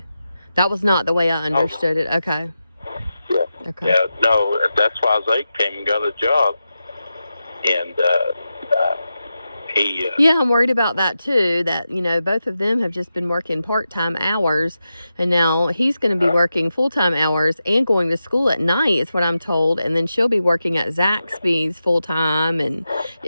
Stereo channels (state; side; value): inverted; both; correlation -0.91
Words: That was not the way I understood it. Okay. Yeah. Okay. Yeah, no, that's why Zade came and got a job. And he... Yeah, I'm worried about that too, that, both of them have just been working part-time hours, and now he's going to be working full-time hours and going to school at night, is what I'm told, and then she'll be working at Zaxby's full-time, and